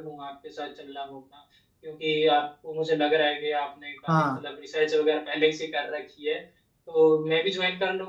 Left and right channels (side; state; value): both; identical; correlation 1.00